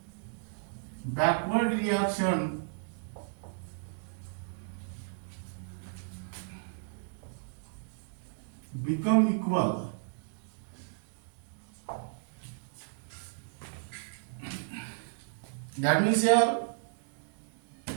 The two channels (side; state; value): left; silent; digital silence